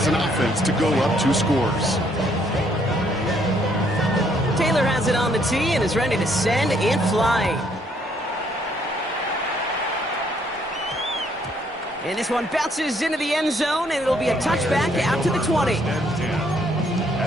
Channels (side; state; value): both; normal; correlation 0.68